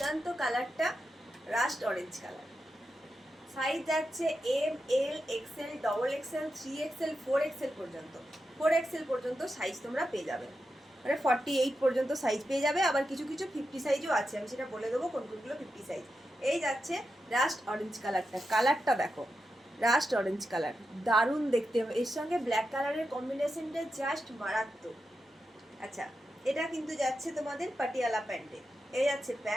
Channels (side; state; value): both; normal; correlation 0.88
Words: কালারটা, রাস্ট অরেঞ্জ কালার। সাইজ যাচ্ছে M, L, XL, double XL, 3XL, 4XL পর্যন্ত। 4XL পর্যন্ত সাইজ তোমরা পেয়ে যাবে, মানে 48 পর্যন্ত সাইজ পেয়ে যাবে। আবার কিছু কিছু 50 সাইজও আছে, আমি সেটা বলে দেবো কোন কোনগুলো 50 সাইজ। এই যাচ্ছে রাস্ট অরেঞ্জ কালারটা দেখো, রাস্ট অরেঞ্জ কালার দারুণ দেখতে। এর সঙ্গে ব্ল্যাক কালারের কম্বিনেশনটা জাস্ট মারাত্মক। আচ্ছা, এটা কিন্তু যাচ্ছে তোমাদের পাটিয়ালা প্যান্টে। এই যাচ্ছে